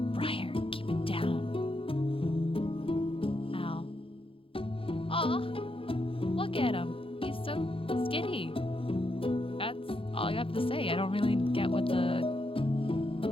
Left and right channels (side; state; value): right; late; 0.26 ms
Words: Briar, keep it down. Al. Aw, look at him. He's so skinny. That's all I have to say. I don't really get what the